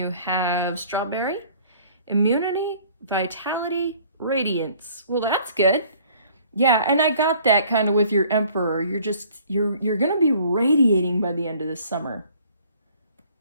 have strawberry, immunity, vitality, radiance. Well, that's good. Yeah, and I got that kind of with your Emperor. You're gonna be radiating by the end of this summer.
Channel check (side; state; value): both; inverted; correlation -0.55